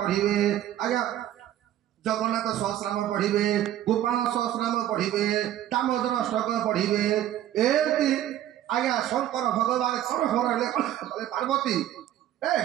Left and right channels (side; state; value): left; quieter; 12.3 dB